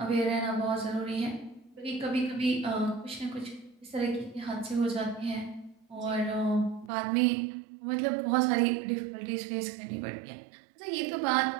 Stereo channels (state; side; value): drops out; left; at 6.9 s